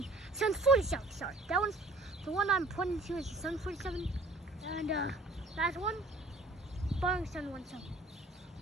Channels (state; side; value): normal; both; correlation 0.52